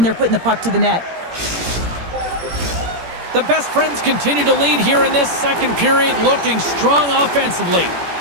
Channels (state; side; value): late; left; 17 ms